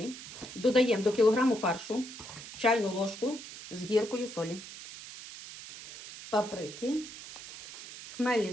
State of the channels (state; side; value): noise; right; hiss, 13 dB below the sound